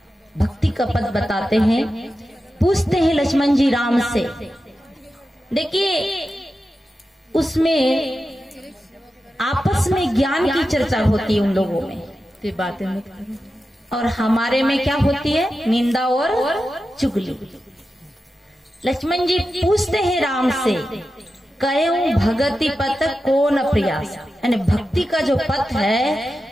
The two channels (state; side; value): normal; both; correlation 0.91